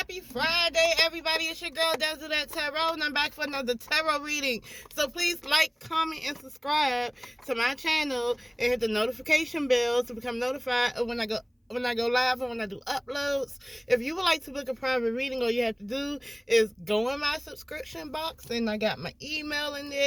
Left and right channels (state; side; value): identical; both; correlation 1.00